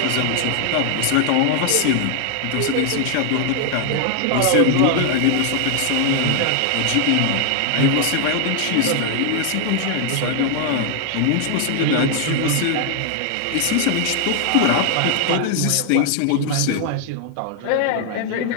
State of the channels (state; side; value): different; both; correlation 0.00